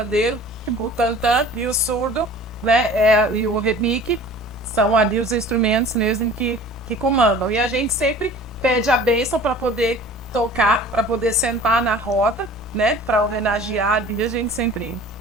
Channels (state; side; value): normal; both; correlation 0.45